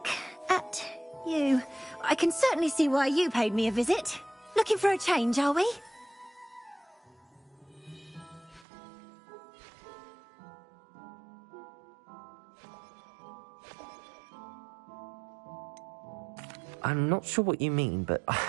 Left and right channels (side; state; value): left; drops out; at 8.7 s